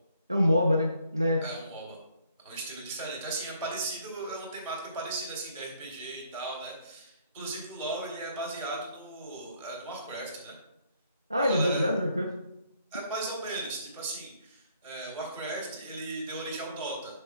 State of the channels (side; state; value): both; inverted; correlation -0.66